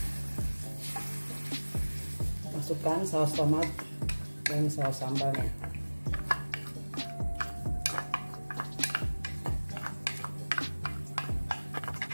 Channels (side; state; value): both; inverted; correlation -1.00